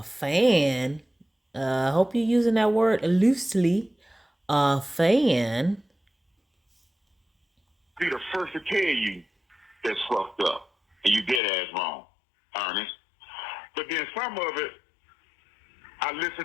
fan? I hope you're using that word loosely. A fan? Be the first to tell you that's fucked up, and you dead ass wrong, Ernest. But then some of it, I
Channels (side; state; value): right; drops out; at 11.4 s